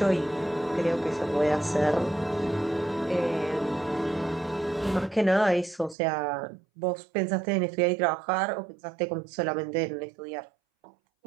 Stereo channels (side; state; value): left; drops out; at 6.0 s